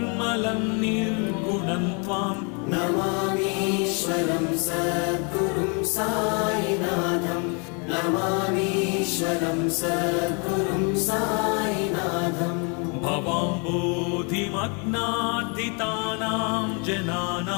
निर्गुणं त्वां नमामीश्वरं सद्गुरुं साईनाथं नमामीश्वरं सद्गुरुं साईनाथम् भवाम्बोधिमग्नार्दितानां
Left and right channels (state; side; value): quieter; right; 35.1 dB